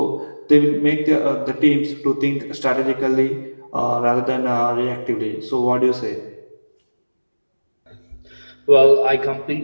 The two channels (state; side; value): inverted; both; correlation -1.00